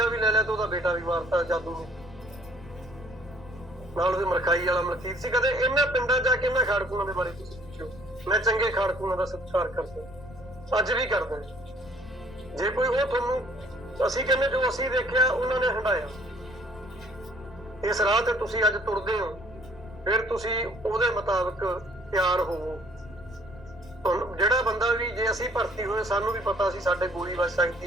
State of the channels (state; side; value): noise; left; rumble, 19 dB below the sound